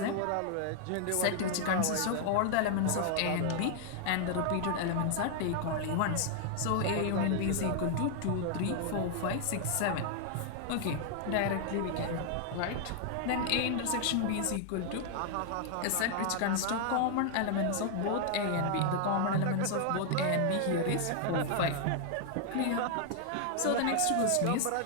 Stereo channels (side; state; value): both; different; correlation 0.00